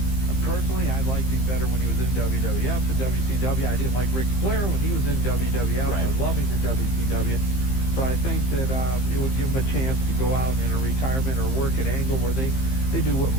Personally, I liked him better when he was in WWF and WCW. I didn't like Ric Flair when he was in WWF. Right. I love him in WCW. So I think that it would give him a chance to go out in a retirement or work at Angle where they do what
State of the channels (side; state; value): right; late; 15 ms